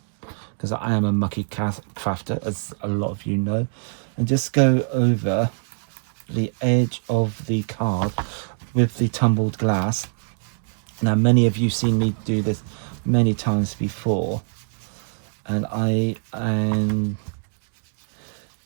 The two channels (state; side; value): silent; left; digital silence